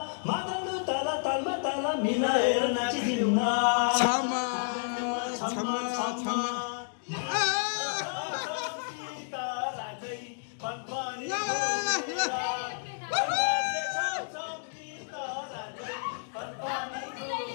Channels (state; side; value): silent; right; digital silence